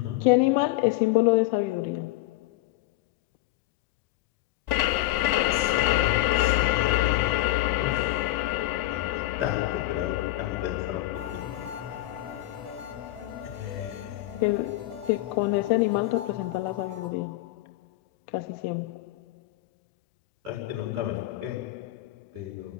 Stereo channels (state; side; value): quieter; right; 17.3 dB